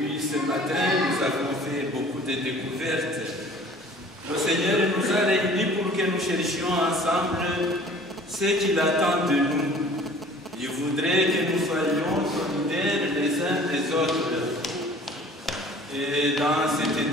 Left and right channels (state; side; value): normal; both; correlation 0.49